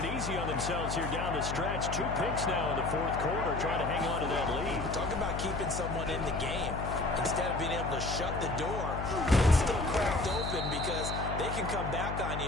easy on themselves here down the stretch. 2 picks now in the 4th quarter, trying to hang on to that lead. Talk about keeping someone in the game. Instead of being able to shut the door, it's still cracked open because they can come back on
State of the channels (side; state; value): left; noise; hum, 5 dB below the sound